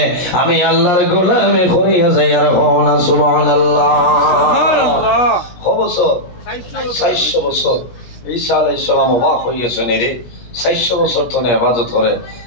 আমি আল্লাহর গোলামি করিয়া যাই আর সুবহানাল্লাহ সুবহানাল্লাহ বছর 400 বছর ঈসা আলাইহিস সালাম অবাক হইয়াছেন রে 400 বছর ধরে ইবাদত করে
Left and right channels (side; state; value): right; late; 17 ms